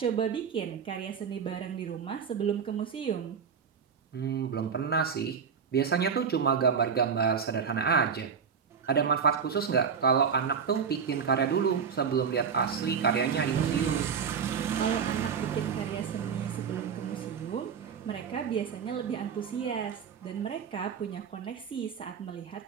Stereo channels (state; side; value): quieter; left; 6.6 dB